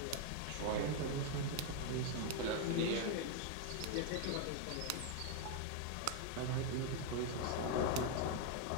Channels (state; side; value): different; both; correlation 0.00